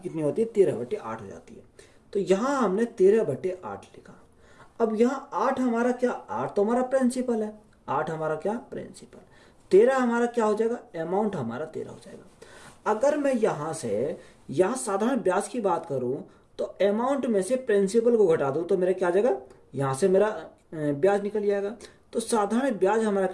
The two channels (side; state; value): both; identical; correlation 1.00